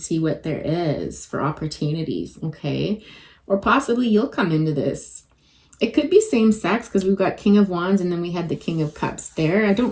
what there is for opportunities, okay? Or possibly you'll come into this. It could be same sex, because we've got King of Wands and then we had the King of Cups there. I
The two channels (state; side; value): identical; both; correlation 1.00